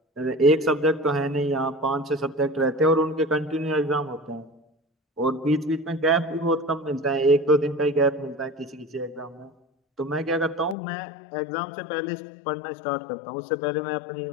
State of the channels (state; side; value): drops out; right; at 10.8 s